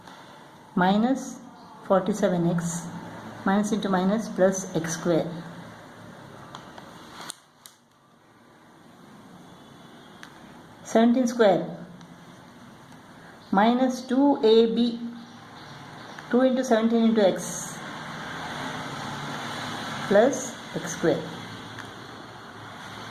minus 47x minus into minus plus x square. 17 square minus 2ab, 2 into 17 into x plus x square.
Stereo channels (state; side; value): identical; both; correlation 1.00